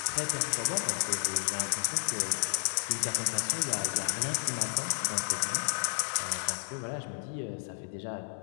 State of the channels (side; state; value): right; silent; 57 dB below the other